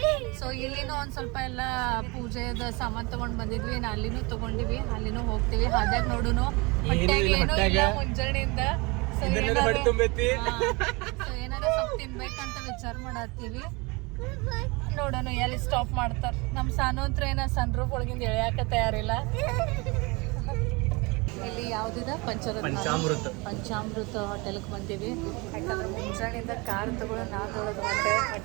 ಸೊ ಇಲ್ಲಿನೂ ಒಂದ್ ಸ್ವಲ್ಪ ಎಲ್ಲ ಪೂಜೆದ ಸಾಮಾನ್ ತಗೊಂಡ್ ಬಂದಿದ್ವಿ. ಅಲ್ಲಿನೂ ತಗೊಂಡಿವಿ, ಅಲ್ಲಿನೂ ಹೋಗ್ತೀವಿ. ಹಾದ್ಯಾಗ ನೋಡುನು ಹೊಟ್ಟೆಗೆ ಏನೂ ಇಲ್ಲ ಮುಂಜಾನೆಯಿಂದ. ಸೊ ಏನಾರ ಸ್ವಲ್ಪ ತಿನ್ಬೇಕಂತ ವಿಚಾರ ಮಾಡತ್ತೀವಿ. ನೋಡೋಣ ಎಲ್ಲಿ ಸ್ಟಾಪ್ ಮಾಡ್ತಾರ. ನಮ್ ಸಾನು ಹತ್ರ ಏನ ಸನ್ ರೂಫ್ ಒಳಗಿಂದ ಎಳ್ಯಾಕ ತಯಾರಿಲ್ಲ. ಇಲ್ಲಿ ಯಾವ್ದಿದ ಪಂಚಾಮೃತ ಹೋಟೆಲ್ಗೆ ಬಂದೀವಿ. ಯಾಕಂದ್ರೆ ಮುಂಜಾನೆಯಿಂದ ಕಾರ್ ತಗೊಳ್ಳೋ ನಾದೊಳಗೆ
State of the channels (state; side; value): quieter; left; 26.6 dB